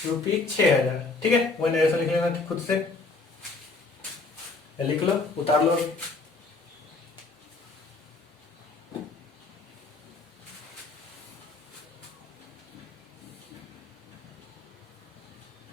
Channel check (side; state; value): right; quieter; 3.7 dB